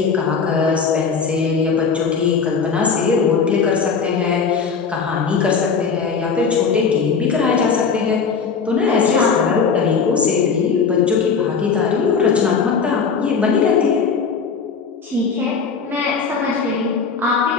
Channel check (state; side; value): quieter; right; 5.6 dB